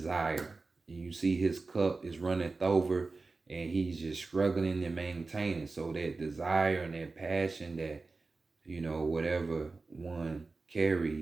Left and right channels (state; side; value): quieter; left; 3.8 dB